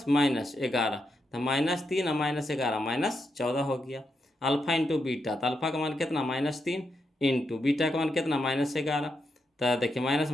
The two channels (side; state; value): both; normal; correlation 0.83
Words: तो -3 और -11 -14 हो गया। अल्फा इंटू बीटा, तो अल्फा का मान कितना -3 इंटू बीटा का मान कितना -11। तो देखिए माइनस